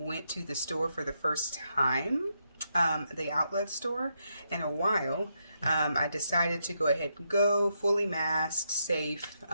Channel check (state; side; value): inverted; both; correlation -0.81